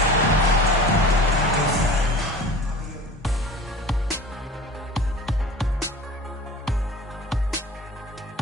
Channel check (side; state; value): both; normal; correlation 0.39